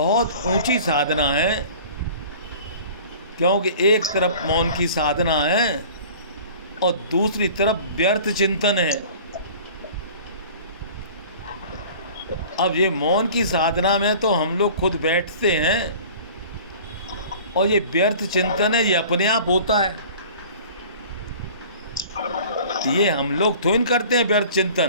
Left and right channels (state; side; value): inverted; both; correlation -0.44